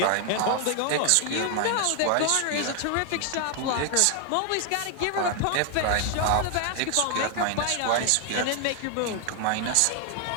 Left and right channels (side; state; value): both; different; correlation 0.00